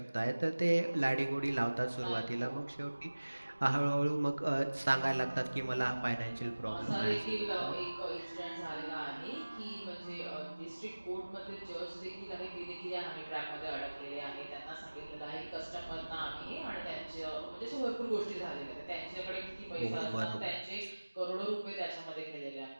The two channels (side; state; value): both; inverted; correlation -1.00